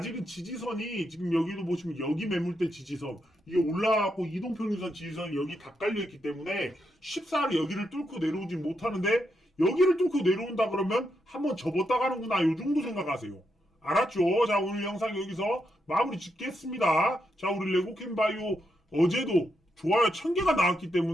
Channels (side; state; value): both; normal; correlation 0.82